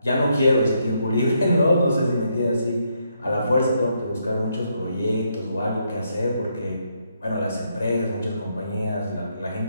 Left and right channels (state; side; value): inverted; both; correlation -0.77